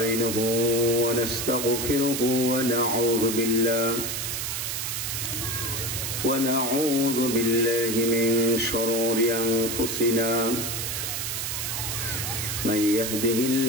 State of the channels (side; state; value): right; noise; hiss, 3 dB below the sound